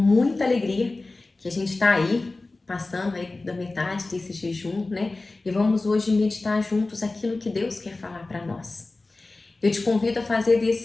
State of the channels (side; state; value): right; quieter; 3.3 dB